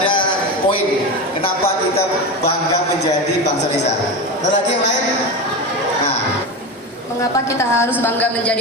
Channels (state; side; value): normal; both; correlation 0.22